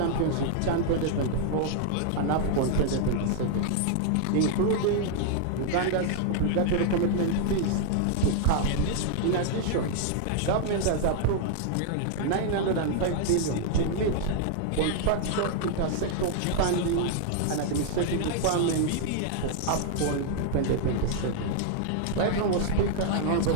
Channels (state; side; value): different; both; correlation 0.00